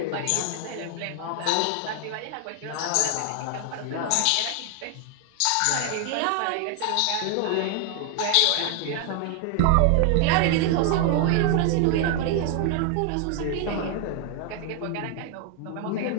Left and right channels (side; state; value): both; different; correlation 0.00